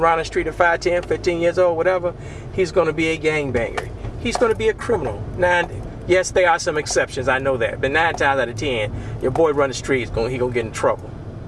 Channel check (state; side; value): identical; both; correlation 1.00